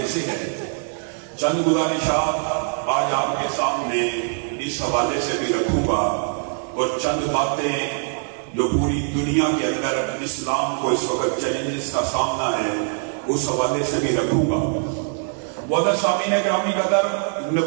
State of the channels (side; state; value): left; silent; 56 dB below the other